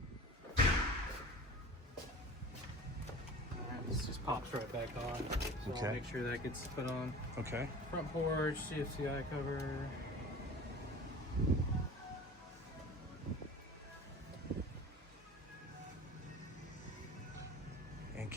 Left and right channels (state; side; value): normal; both; correlation 0.39